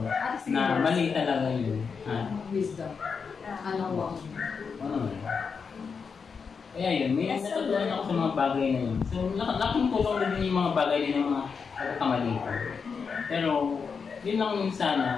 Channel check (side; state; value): right; quieter; 5.7 dB